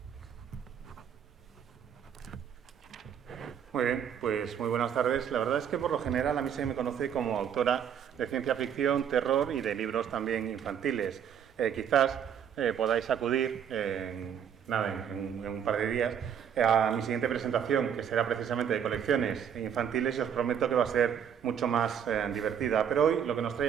Muy bien, pues muy buenas tardes. La verdad es que por lo general a mí se me conoce como autora de ciencia ficción, terror y de libros también infantiles. Quizás podáis acudir en un par de días a mi siguiente presentación, que será precisamente de colecciones infantiles, y os prometo que va a ser mucho más divertida. Pero hoy lo que nos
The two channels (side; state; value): left; quieter; 8.5 dB